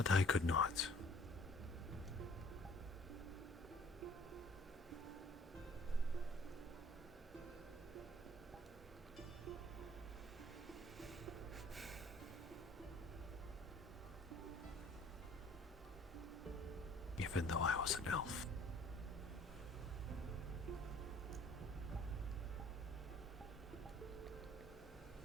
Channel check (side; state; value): both; normal; correlation 0.55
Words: I could not. Even though I was an elf.